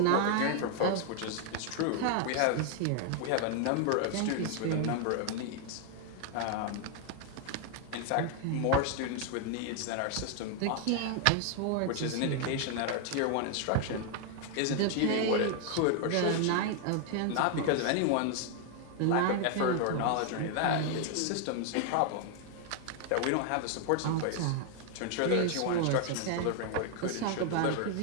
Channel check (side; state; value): both; different; correlation 0.00